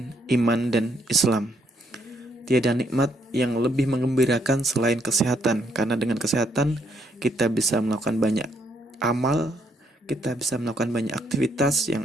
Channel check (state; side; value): normal; both; correlation 0.72